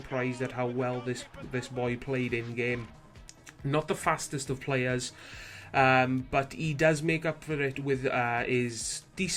at how well this boy played in game. Not the fastest of players, but he does make up for it with his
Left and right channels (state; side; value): identical; both; correlation 1.00